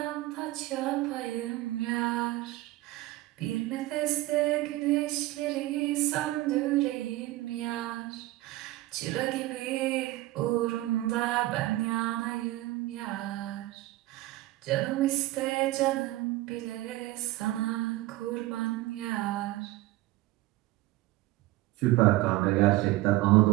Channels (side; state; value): left; quieter; 17.8 dB